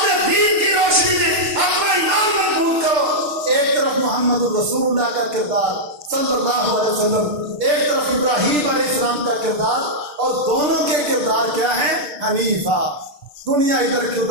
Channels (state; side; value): late; left; 6.3 ms